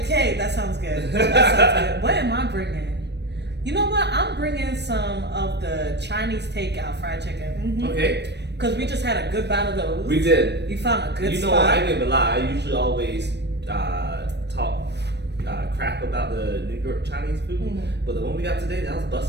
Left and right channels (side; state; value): left; late; 0.50 ms